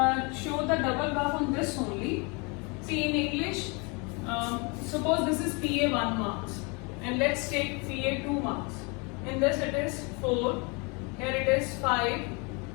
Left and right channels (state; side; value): quieter; right; 30.8 dB